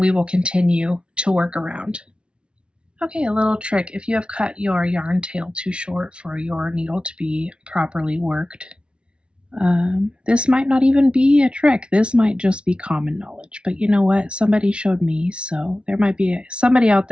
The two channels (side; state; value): left; late; 0.058 ms